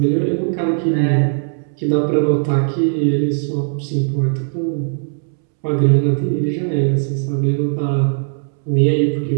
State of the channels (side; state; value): left; silent; 67 dB below the other